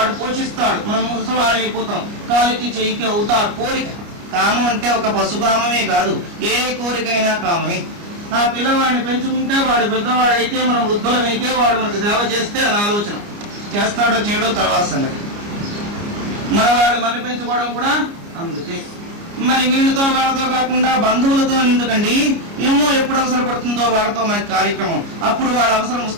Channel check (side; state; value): left; late; 29 ms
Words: పోషిస్తాడు, మనం ముసవాడు అయిపోతాం, కాలికి చెయ్యికి అవుతారు. కోరిక. కామం అంటే ఒక పశుకామమే కాదు, ఏ కోరికైనా కామమే. ఆ పిల్లవాడిని పెంచుకుంటే వాడు పెద్దవాడైతే, మనం వృద్ధులమైతే వాడు మనకు సేవ చేస్తే అని ఆలోచన. చేస్తాడో చేయడో తర్వాత సంగతి. మనవాడు మన పెంచుకోవడం కూడా అందుకే. మరి వీళ్ళతో వాళ్ళతో కాకుండా బంధువులతో ఎందుకండి? ఏమో ఎప్పుడు అవసరపడుతుందో వాళ్ళతో మనకి కార్యక్రమం, అప్పుడు వాళ్ళ అవసరం